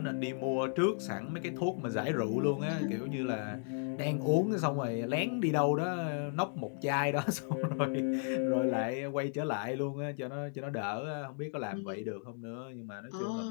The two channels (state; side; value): silent; right; 55 dB below the other